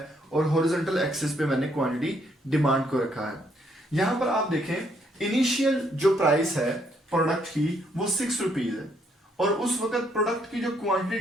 और हॉरिजॉन्टल एक्सिस पे मैंने क्वांटिटी डिमांड को रखा है। यहां पर आप देखें, इनिशियल जो प्राइस है प्रोडक्ट की वो 6 रुपीज है और उस वक्त प्रोडक्ट की जो क्वांटिटी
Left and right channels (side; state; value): both; normal; correlation 0.71